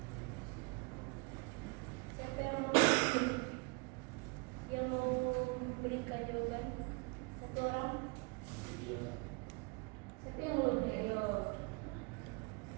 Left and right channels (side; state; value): left; quieter; 30.4 dB